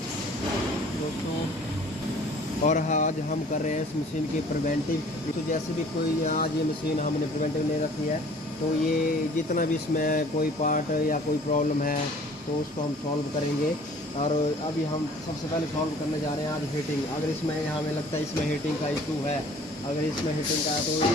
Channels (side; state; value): both; normal; correlation 0.51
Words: दोस्तों आज हम कर रहे हैं इस मशीन की प्रिवेंटिव। तो जैसे भी कोई आज ये मशीन हमने प्रिवेंटिव नहीं रखी है तो ये जितना भी इसमें कोई पार्ट या कोई प्रॉब्लम है तो उसको हम सॉल्व करेंगे। और अभी हम सबसे पहले सॉल्व करने जा रहे हैं आज हीटिंग। अगर इसमें हमें लगता है इसमें हीटिंग का इशू है, अगर इसमें हीटिंग का है तो